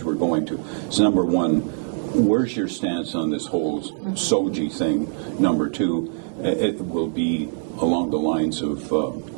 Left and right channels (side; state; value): left; silent; digital silence